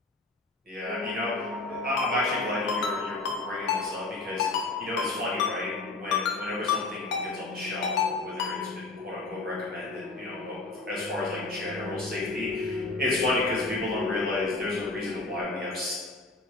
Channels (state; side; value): quieter; right; 3.3 dB